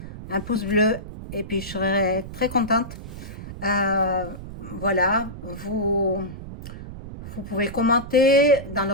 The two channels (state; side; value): noise; right; rumble, 11 dB below the sound